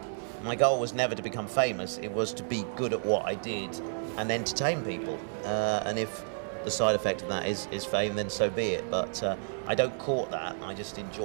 My goal was never to become famous. It was to be good at what I did and entertain people. And if the side effect of that is fame, then so be it. But I don't court that. I just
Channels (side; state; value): left; silent; 57 dB below the other